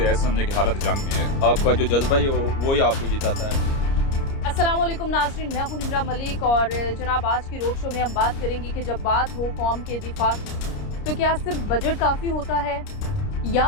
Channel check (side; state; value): right; late; 30 ms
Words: ایسے سمجھے کہ حالت جنگ میں ہے. آپ کا جو جذبہ ہے وہی آپ کو جتاتا ہے. السلام علیکم ناظرین، میں ہوں نمرہ ملک اور جناب آج کی روڈ شو میں ہم بات کریں گے کہ جب بات ہو قوم کے دفاع کی تو کیا صرف بجٹ کافی ہوتا ہے